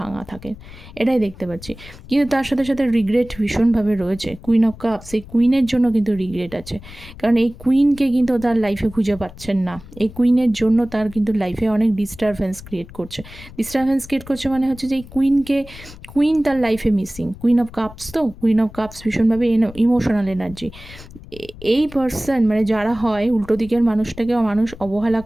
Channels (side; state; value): left; noise; rumble, 17 dB below the sound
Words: থাকেন, এটাই দেখতে পাচ্ছি। কিন্তু তার সাথে সাথে রিগ্রেট ভীষণভাবে রয়েছে। কুইন অফ কাপস, এই কুইনের জন্য কিন্তু রিগ্রেট আছে, কারণ এই কুইনকে কিন্তু তার লাইফে খুঁজে পাচ্ছেন না। এই কুইনের জন্য তার কিন্তু লাইফে অনেক ডিস্টারবেন্স ক্রিয়েট করছে মানে হচ্ছে যে এই কুইন তার লাইফে মিসিং। কুইন অফ কাপস, তো কুইন অফ কাপস ভীষণভাবে ইমোশনাল এনার্জি। এই পার্সন মানে যারা হয় উল্টো দিকের মানুষটাকে মানুষ অবহেলা